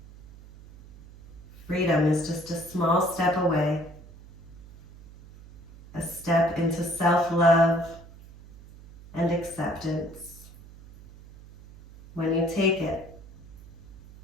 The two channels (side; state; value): right; noise; hum, 20 dB below the sound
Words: Freedom is just a small step away, a step into self-love and acceptance. When you take it,